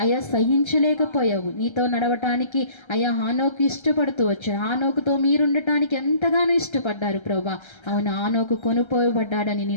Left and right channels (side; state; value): right; late; 1.3 ms